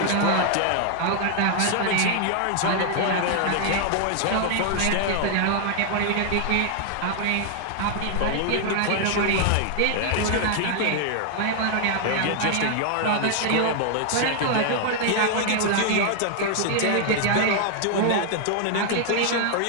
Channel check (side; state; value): both; different; correlation 0.00